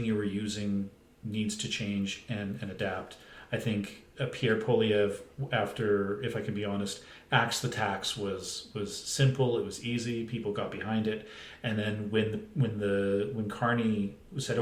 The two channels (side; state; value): both; identical; correlation 1.00